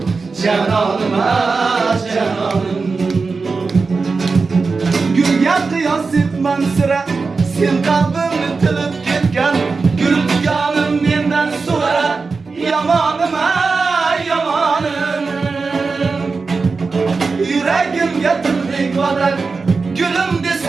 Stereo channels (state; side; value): quieter; left; 4.4 dB